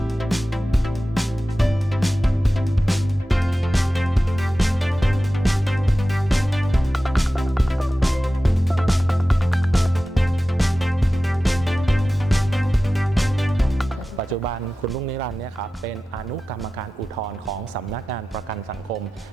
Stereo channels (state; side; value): normal; both; correlation 0.95